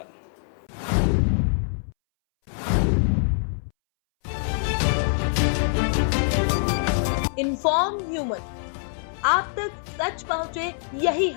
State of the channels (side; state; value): right; silent; 62 dB below the other